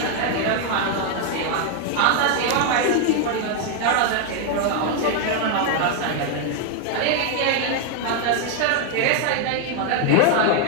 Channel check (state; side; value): different; both; correlation 0.00